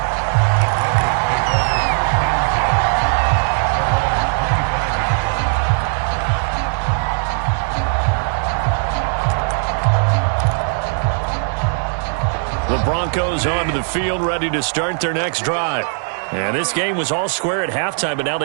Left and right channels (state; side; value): silent; left; 58 dB below the other